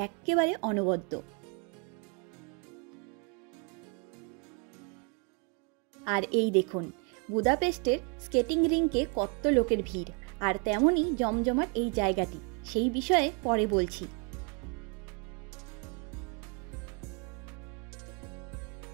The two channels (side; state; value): left; quieter; 34.4 dB